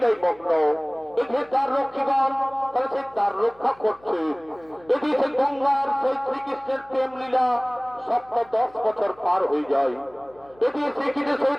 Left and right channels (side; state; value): left; noise; hum, 28 dB below the sound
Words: মগ্ন। এই যে দ্বার রক্ষীগণ তাই সেই দ্বার রক্ষা করছে। যদি সেই গঙ্গার সেই শ্রীকৃষ্ণের প্রেম লীলা 10 বছর পার হয়ে যায়, যদি শ্রীকৃষ্ণের সেই